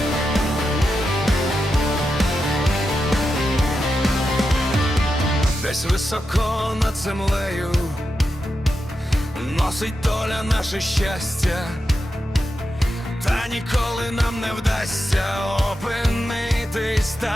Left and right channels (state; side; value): normal; both; correlation 0.88